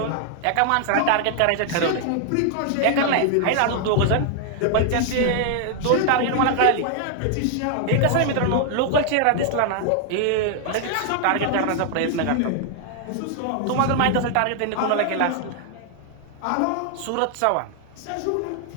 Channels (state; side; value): different; both; correlation 0.00